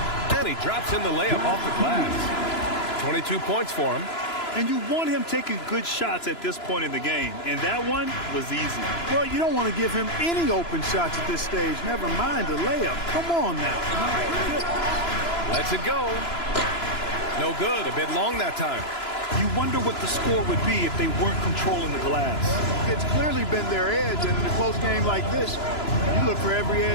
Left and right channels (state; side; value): late; right; 3.0 ms